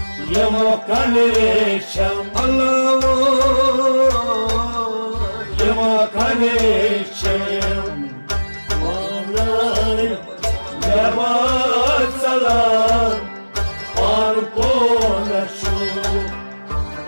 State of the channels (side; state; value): both; inverted; correlation -1.00